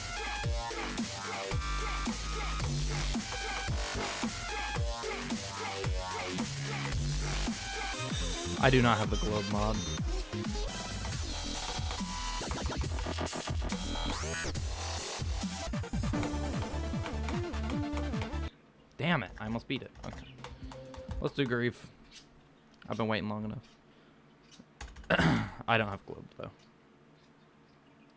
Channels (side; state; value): both; identical; correlation 1.00